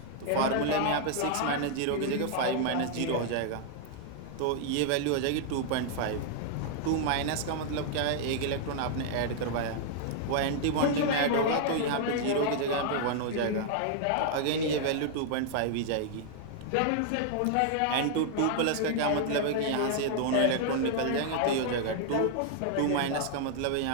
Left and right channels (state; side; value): different; both; correlation -0.01